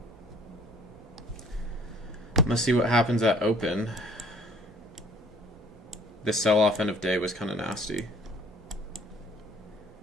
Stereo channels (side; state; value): both; normal; correlation 0.56